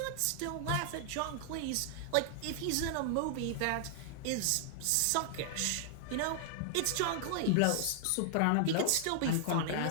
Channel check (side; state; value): both; different; correlation -0.01